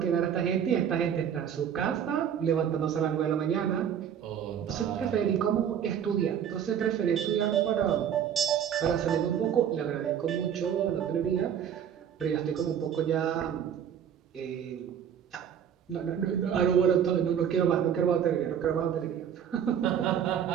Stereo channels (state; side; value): quieter; left; 8.8 dB